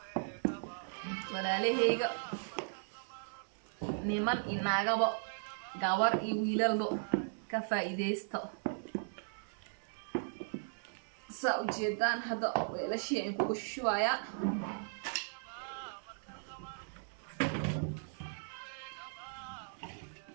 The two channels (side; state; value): left; silent; digital silence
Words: walaalahayga niman inaagaba gawar iyo wiilalba ka faa'iideysto saa u jeedaan hadda weelashii aan kugu shubaaya